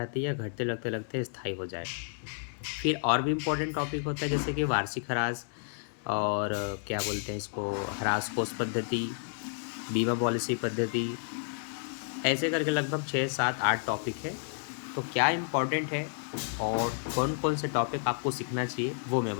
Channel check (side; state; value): right; silent; 57 dB below the other